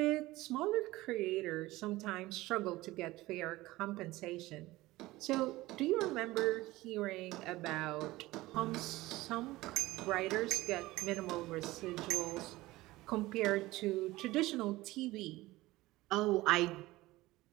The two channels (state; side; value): quieter; left; 18.7 dB